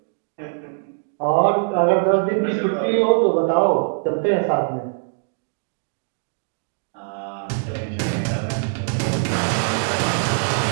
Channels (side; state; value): left; silent; 62 dB below the other